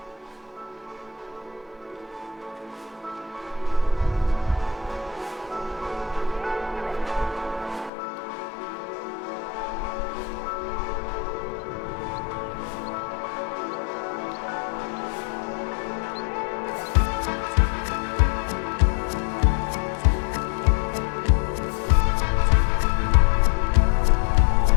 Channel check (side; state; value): right; drops out; at 7.9 s